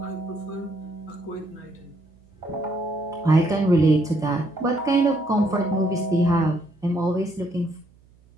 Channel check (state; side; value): noise; right; hum, 29 dB below the sound